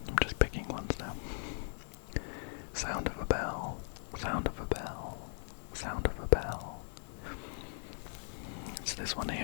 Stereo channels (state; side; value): silent; right; 52 dB below the other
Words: I'm just picking ones now. Sound of a bell. It's this one